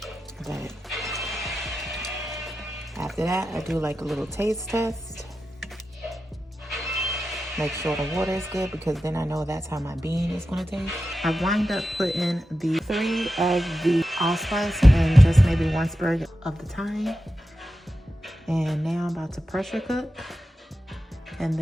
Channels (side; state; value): both; normal; correlation 0.91